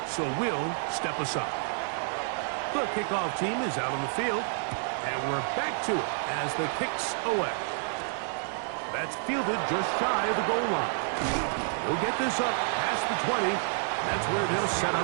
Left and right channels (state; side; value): silent; left; 58 dB below the other